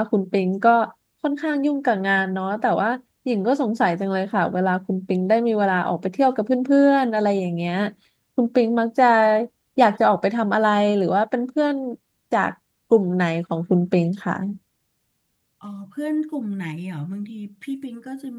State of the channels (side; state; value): both; identical; correlation 1.00